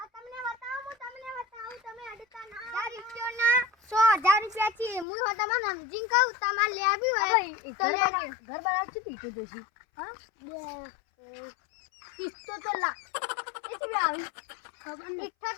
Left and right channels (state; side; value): drops out; right; at 5.1 s